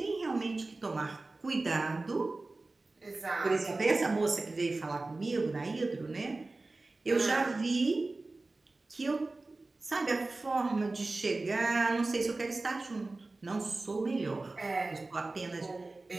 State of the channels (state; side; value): quieter; left; 3.3 dB